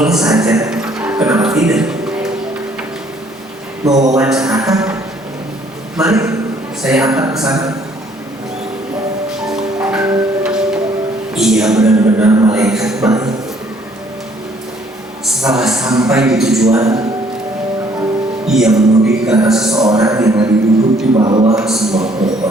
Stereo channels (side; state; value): both; normal; correlation 0.62